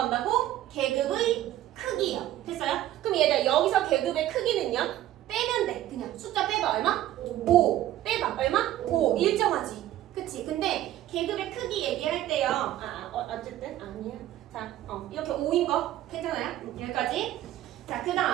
계급의 크기요. 됐어요? 그럼 얘들 여기서 계급의 크기는요? 빼면 돼. 그냥 숫자 빼봐. 얼마? 5. 빼봐. 얼마? 5. 일정하지. 그치? 근데 계급의 크기 얘기할 때요. 어쨌든 아니야. 자, 이렇게 5인 거 괜찮아요? 여기까지. 자, 그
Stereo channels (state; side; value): quieter; left; 13.6 dB